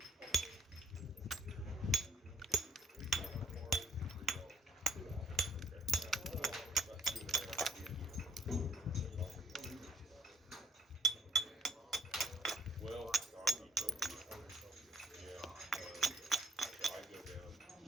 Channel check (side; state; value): both; normal; correlation 0.63